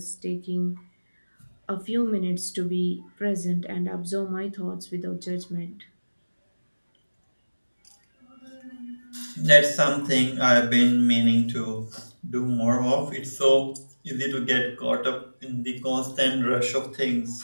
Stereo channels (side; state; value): both; inverted; correlation -1.00